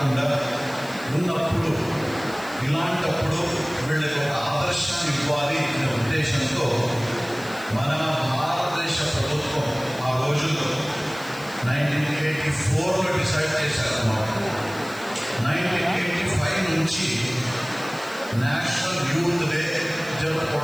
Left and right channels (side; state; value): left; noise; hiss, 20 dB below the sound